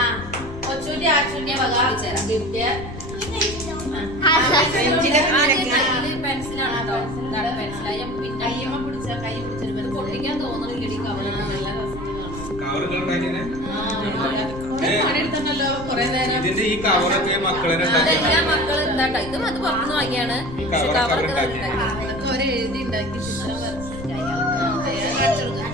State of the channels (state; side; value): noise; left; rumble, 13 dB below the sound